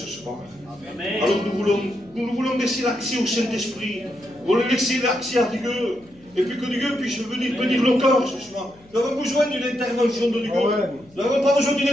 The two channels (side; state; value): left; noise; hum, 27 dB below the sound